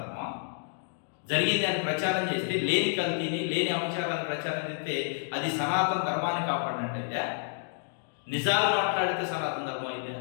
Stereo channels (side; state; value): right; silent; digital silence